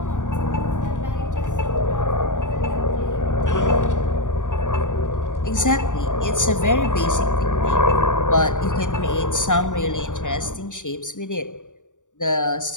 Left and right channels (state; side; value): late; right; 0.86 ms